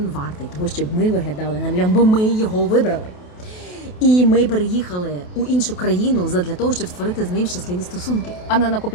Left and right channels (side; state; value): right; late; 28 ms